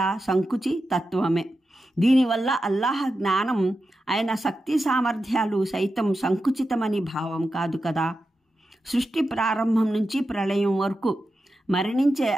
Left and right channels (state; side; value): normal; both; correlation 0.90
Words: సంకుచి తత్వమే. దీనివల్ల అల్లాహ్ జ్ఞానం ఆయన శక్తి సామర్థ్యాలు సైతం సంకుచితమని భావం కాదు కదా. సృష్టి ప్రారంభం నుంచి ప్రళయం వరకు మరణించే